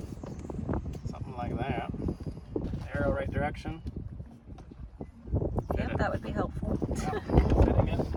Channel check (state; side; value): identical; both; correlation 1.00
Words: something like that. Arrow right direction. Yep, that would be helpful. Fitting it.